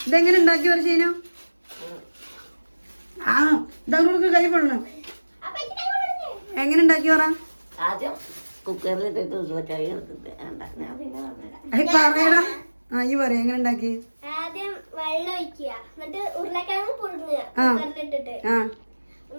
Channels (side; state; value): both; inverted; correlation -1.00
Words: ഇതെങ്ങനെ ഉണ്ടാക്കി പറ ചെയ്യുന്നോ? ആ ഇതങ്ങോട്ട് കൈ പൊടണം. എങ്ങനെ ഉണ്ടാക്കി പറ. പറയടാ. ആ ഈ പറയാ എങ്ങനെ ഉണ്ടാക്കി. ആദ്യം വെള്ളം ഒഴിക്കുക, എന്നിട്ട് ഉരുളക്കിഴങ്ങ് പുഴുങ്ങുക, കുക്കറിലിട്ടിട്ട്